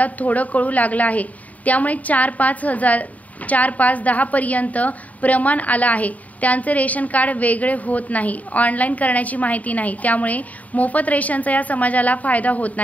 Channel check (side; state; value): right; late; 0.072 ms